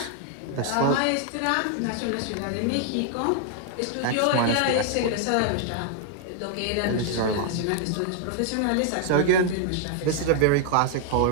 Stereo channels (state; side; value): different; both; correlation 0.00